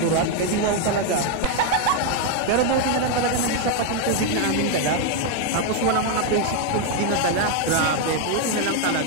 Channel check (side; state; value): both; different; correlation 0.01